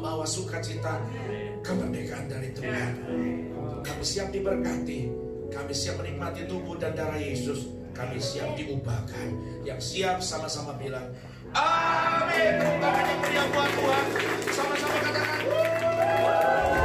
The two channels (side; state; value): both; identical; correlation 1.00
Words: sukacita, kemerdekaan dari Tuhan. Kami siap diberkati. Kami siap menikmati tubuh dan darah Yesus. Kami siap diubahkan. Yang siap sama-sama bilang amin. Tepuk tangan yang meriah buat Tuhan. Sama-sama katakan